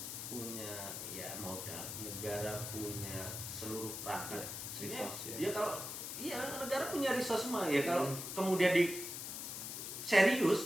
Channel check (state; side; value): noise; left; hiss, 6 dB below the sound